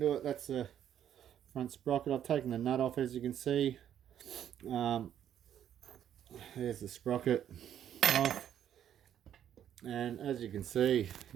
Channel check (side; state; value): left; quieter; 10.1 dB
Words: it. That's the front sprocket. I've taken the nut off, as you can see. There's the sprocket off, and as you can see,